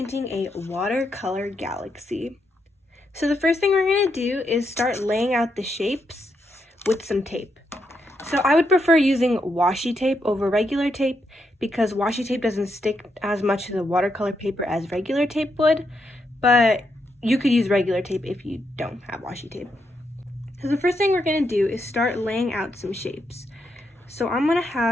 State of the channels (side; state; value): both; normal; correlation 0.81